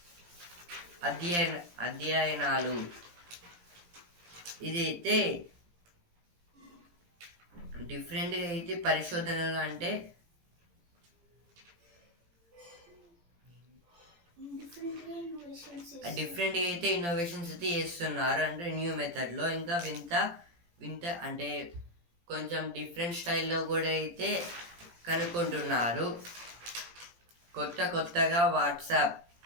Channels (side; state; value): left; late; 17 ms